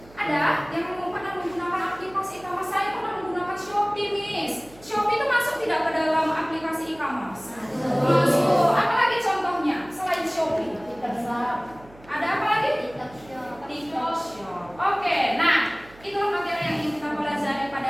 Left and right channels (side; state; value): right; noise; hum, 23 dB below the sound